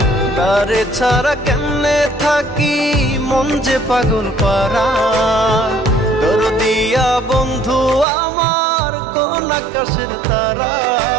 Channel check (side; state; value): left; drops out; at 8.1 s